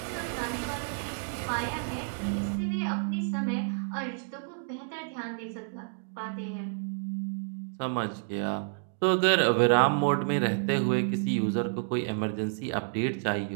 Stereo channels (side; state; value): left; silent; digital silence